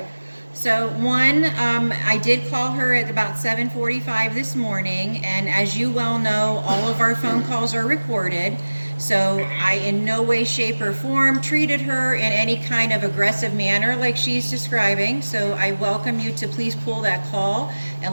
So one, I did call her at about 7:45 this morning, and as you well know, all of our phone calls are recorded. So I in no way, shape, or form treated her in any kind of aggressive manner like she's describing. So I welcome you to please pull that call,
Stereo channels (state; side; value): inverted; both; correlation -1.00